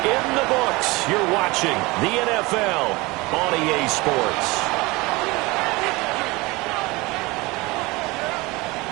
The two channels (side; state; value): left; quieter; 23.1 dB